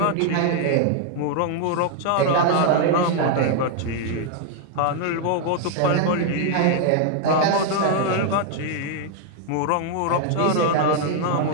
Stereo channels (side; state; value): both; different; correlation 0.00